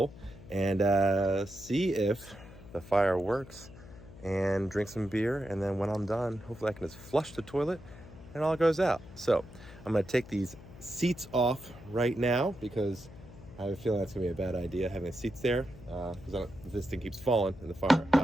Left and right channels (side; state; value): left; noise; hum, 18 dB below the sound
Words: and see if the fire works and drink some beer, and then when I'm done, hopefully I can just flush the toilet and all goes out. So I'm gonna take these seats off right now because I have a feeling that's gonna be a bad idea having the seats there because if this thing keeps falling in the fire, I